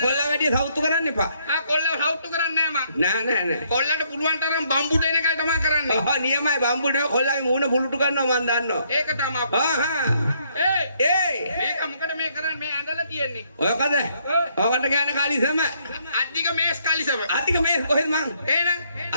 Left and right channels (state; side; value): inverted; both; correlation -0.70